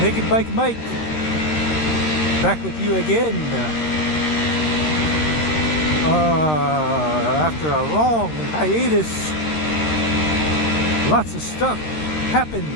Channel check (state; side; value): late; right; 13 ms